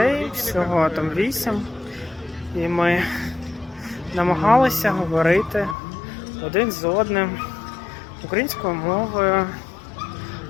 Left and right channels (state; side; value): drops out; right; at 5.8 s